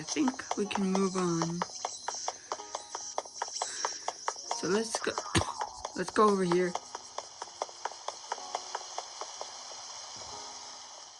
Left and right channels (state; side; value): identical; both; correlation 1.00